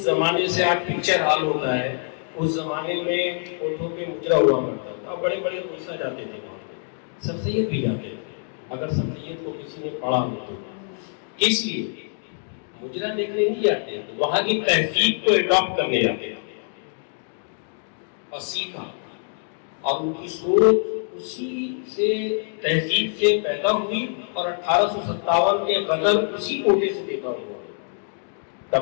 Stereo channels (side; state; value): right; silent; 62 dB below the other